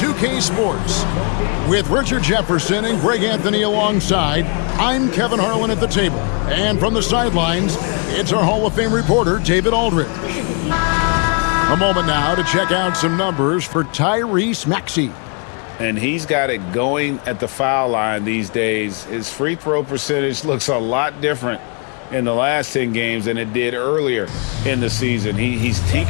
Sports. With Richard Jefferson and Greg Anthony alongside, I'm Kevin Harlan at the table. And from the sidelines, it's our Hall of Fame reporter, David Aldridge. A moment now to check out some numbers for Tyrese Maxey. And he's got it going at the foul line these days. His free throw percentage looks a lot different in the last 10 games than it did earlier in the season. He's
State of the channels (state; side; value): quieter; right; 38.1 dB